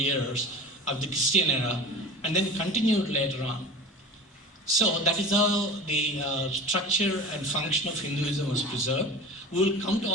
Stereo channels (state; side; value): normal; both; correlation 0.35